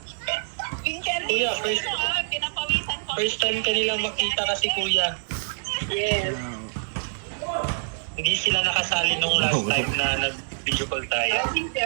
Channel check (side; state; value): left; silent; digital silence